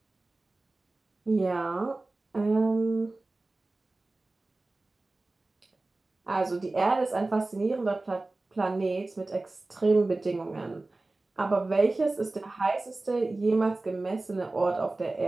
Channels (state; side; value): quieter; left; 3.1 dB